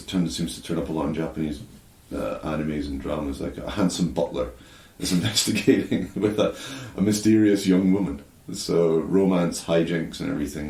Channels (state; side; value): identical; both; correlation 1.00